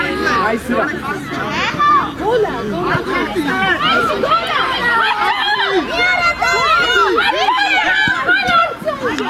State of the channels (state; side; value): identical; both; correlation 1.00